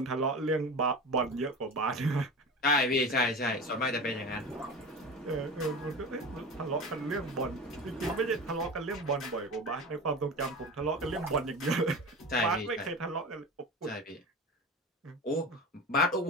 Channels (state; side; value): normal; both; correlation 0.30